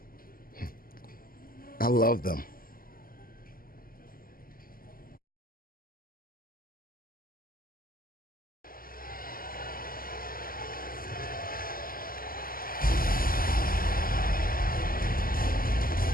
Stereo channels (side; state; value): right; late; 0.42 ms